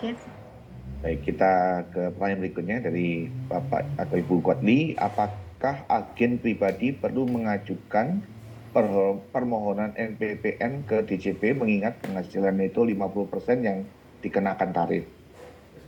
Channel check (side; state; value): both; identical; correlation 1.00